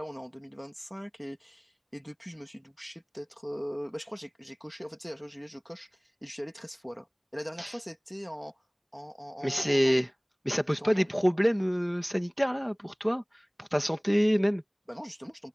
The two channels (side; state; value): both; identical; correlation 1.00